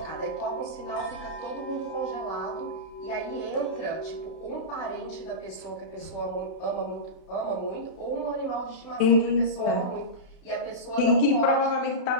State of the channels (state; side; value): late; right; 31 ms